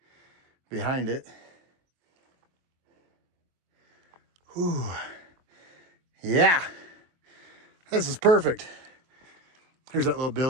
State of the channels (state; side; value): late; left; 23 ms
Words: Behind it. Whew. Yeah. This is perfect. Here's that little